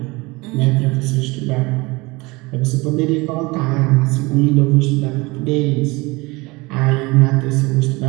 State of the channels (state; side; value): quieter; left; 23.9 dB